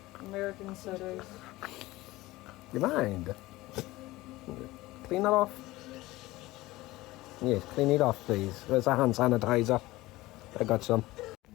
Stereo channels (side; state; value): right; quieter; 18.8 dB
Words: American sodas. You mind? Clean that off. Yes, clean it off, please. There's a hand sanitizer. I got some.